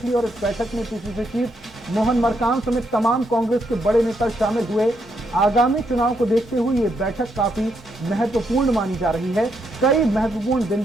ली और इस बैठक में पीसीसी चीफ मोहन मरकाम समेत तमाम कांग्रेस के बड़े नेता शामिल हुए। आगामी चुनाव को देखते हुए ये बैठक काफी महत्वपूर्ण मानी जा रही है। कई महत्वपूर्ण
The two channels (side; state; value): both; normal; correlation 0.78